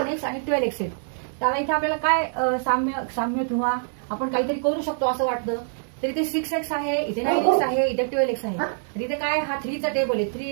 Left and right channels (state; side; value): silent; left; 62 dB below the other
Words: आणि 12x आहे. तर इथे आपल्याला काय साम्य किंवा आपण काहीतरी करू शकतो असं वाटतं. तर इथे 6x आहे, इथे 9x आहे, इथे 12x आहे. तर इथे काय हा 3चा टेबल आहे.